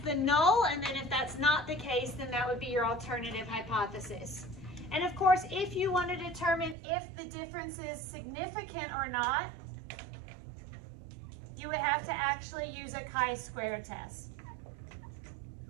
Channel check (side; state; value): left; drops out; at 6.8 s